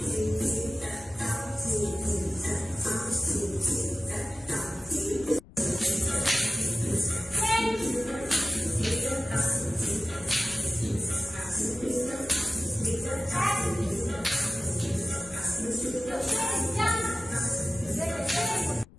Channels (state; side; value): noise; left; rumble, 22 dB below the sound